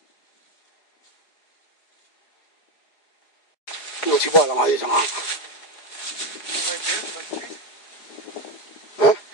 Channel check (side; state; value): right; late; 4.9 ms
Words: 我去报了嘛，有什么？嗯？